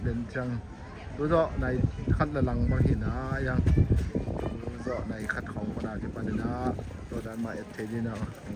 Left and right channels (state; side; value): identical; both; correlation 1.00